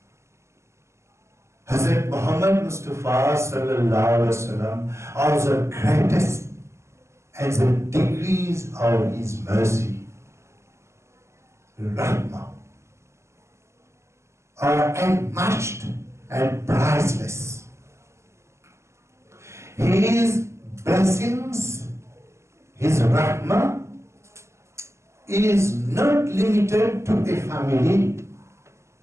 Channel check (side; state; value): left; late; 0.14 ms